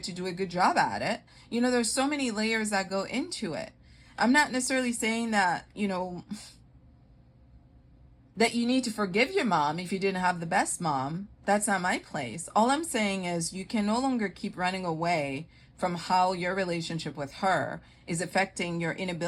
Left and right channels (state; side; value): identical; both; correlation 1.00